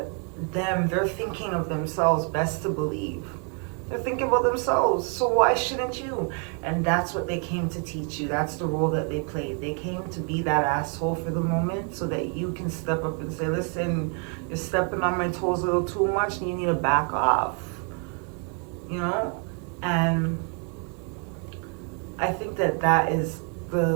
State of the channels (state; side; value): quieter; left; 39.2 dB